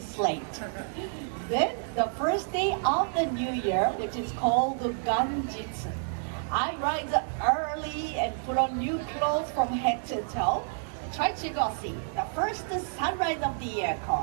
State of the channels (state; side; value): silent; left; 58 dB below the other